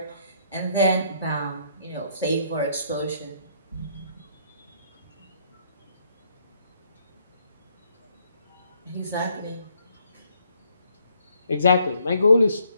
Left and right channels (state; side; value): inverted; both; correlation -0.69